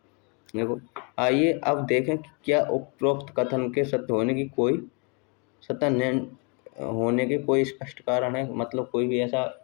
देखो, आइए अब देखें कि क्या उपरोक्त कथन के सत्य होने के कोई स्पष्ट कारण है, मतलब कोई भी ऐसा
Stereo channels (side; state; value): right; quieter; 34.0 dB